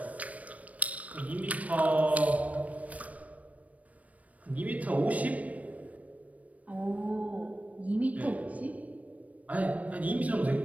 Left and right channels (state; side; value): late; left; 0.068 ms